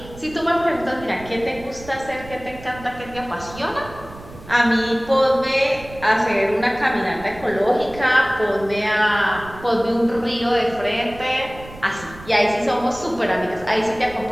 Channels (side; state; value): right; noise; rumble, 17 dB below the sound